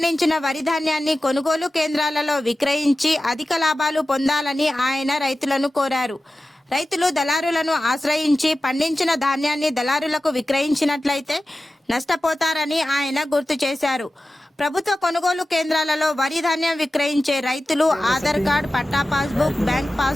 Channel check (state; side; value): normal; both; correlation 0.95